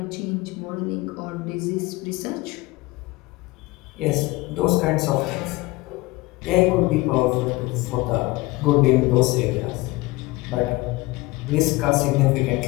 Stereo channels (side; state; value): right; quieter; 21.8 dB